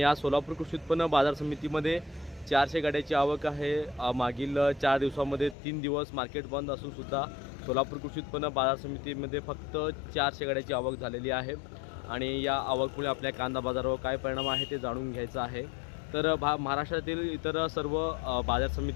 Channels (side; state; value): right; drops out; at 5.6 s